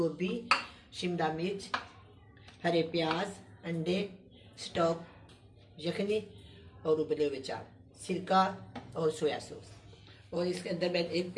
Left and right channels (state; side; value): identical; both; correlation 1.00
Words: शिमला मिर्च, हरे प्याज, अंडे, स्टॉक, यखनी और उबले हुए चावल, सिरका और सोया सॉस। और इसके अंदर मैं एक